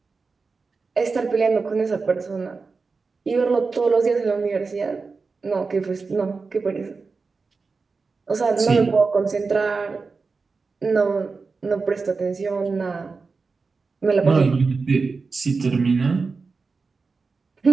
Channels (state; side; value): quieter; left; 4.4 dB